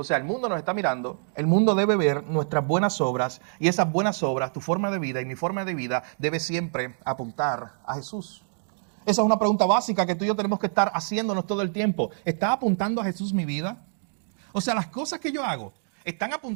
sea, el mundo nos está mirando, el mundo debe ver nuestras buenas obras y esas buenas obras, tu forma de vida y mi forma de vida debe siempre apuntar a Jesús. Esa es una pregunta básica que tú y yo tenemos que estar haciéndonos todo el tiempo. ¿Está apuntando a Jesús mi vida? O sea, las cosas que yo hago, ¿están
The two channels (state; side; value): silent; left; digital silence